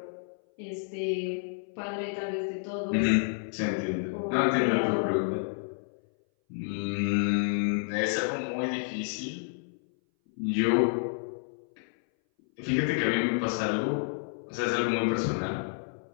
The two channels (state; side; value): silent; right; 58 dB below the other